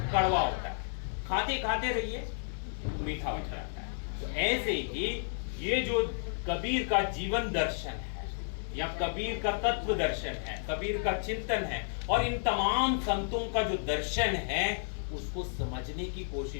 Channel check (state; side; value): silent; right; 56 dB below the other